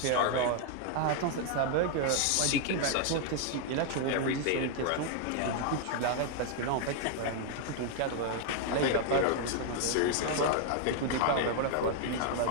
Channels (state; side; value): different; both; correlation 0.00